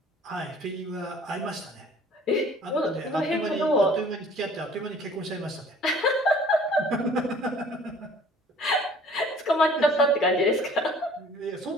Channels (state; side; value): normal; both; correlation 0.52